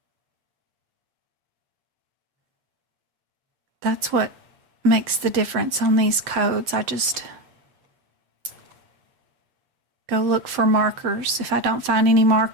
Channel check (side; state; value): left; late; 7.7 ms